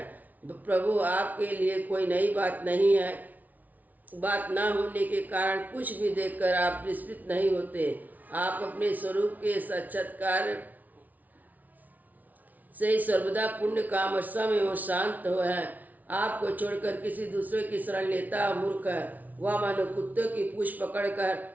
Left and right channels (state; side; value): late; left; 0.077 ms